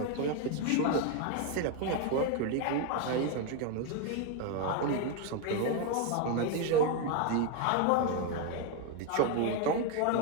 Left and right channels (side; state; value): both; different; correlation 0.02